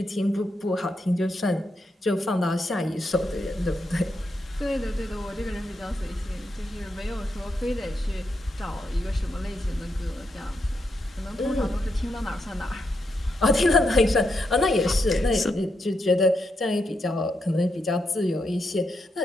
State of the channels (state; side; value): normal; both; correlation 0.82